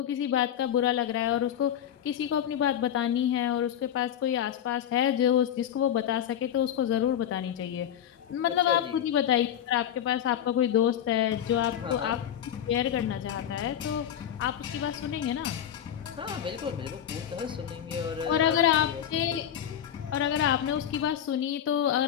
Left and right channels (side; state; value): right; quieter; 10.0 dB